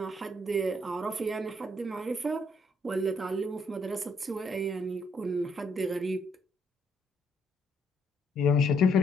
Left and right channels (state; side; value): normal; both; correlation 0.71